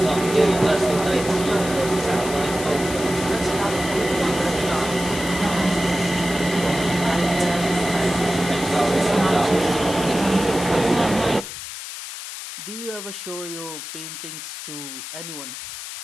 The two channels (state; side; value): noise; left; hiss, 9 dB below the sound